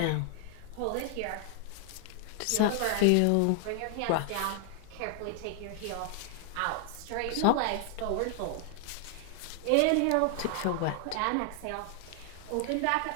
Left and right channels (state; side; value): different; both; correlation 0.00